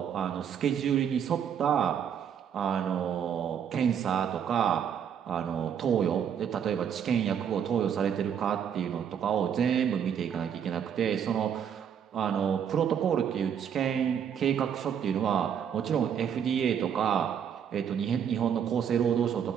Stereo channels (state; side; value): quieter; left; 8.3 dB